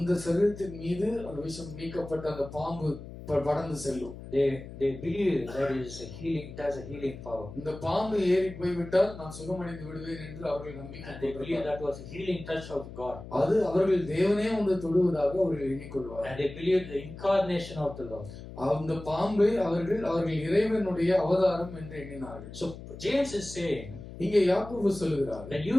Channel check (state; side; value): noise; left; hum, 13 dB below the sound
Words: சரீரத்தின் மீது அந்த விஷம் நீக்கப்பட்ட அந்த பாம்பு படர்ந்து செல்லும். they believe that it is a healing, it has a healing power. இந்த பாம்பு ஏறி போய்விட்டால் நான் சுகமடைந்து விடுவேன் என்று அவர்கள் நம்பிக்கை And they believe that was a healing touch of God. அது அவர்கள் தேவனே வந்து தொடுவதாக அவர்கள் எண்ணிக்கொள்வார்கள். And they believe the incarnation of the Lord. அந்த பாம்பை அவர்கள் இறைவனுடைய அவதாரம் என்று எண்ணினார்கள். So James is saying, இங்கே யாக்கோபு சொல்லுகிறார், that you